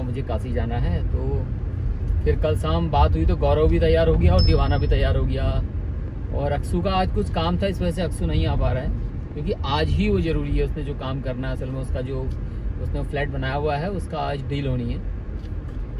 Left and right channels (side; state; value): both; identical; correlation 1.00